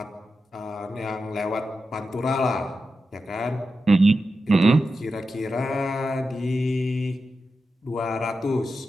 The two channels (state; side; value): normal; both; correlation 0.90